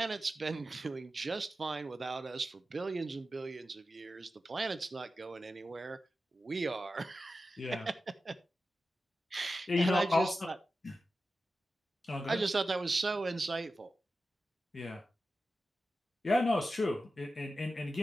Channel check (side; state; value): both; normal; correlation 0.92